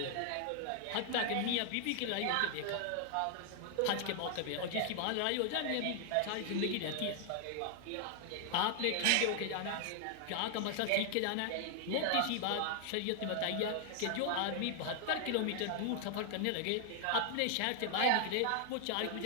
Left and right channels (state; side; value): different; both; correlation 0.00